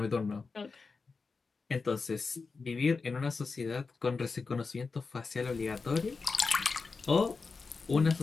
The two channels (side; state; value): right; quieter; 4.5 dB